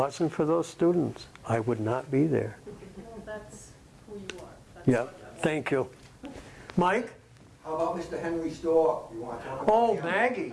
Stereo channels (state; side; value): identical; both; correlation 1.00